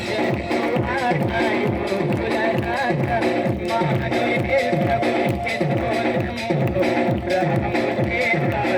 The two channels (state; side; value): identical; both; correlation 1.00